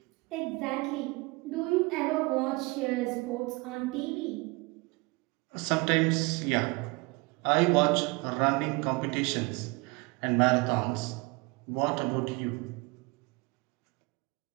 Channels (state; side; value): quieter; left; 26.4 dB